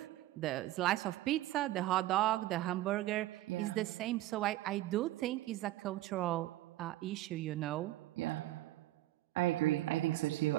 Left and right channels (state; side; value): quieter; left; 15.9 dB